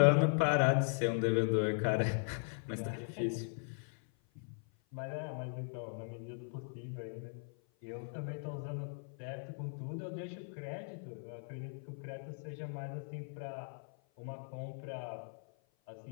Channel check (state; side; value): silent; right; 52 dB below the other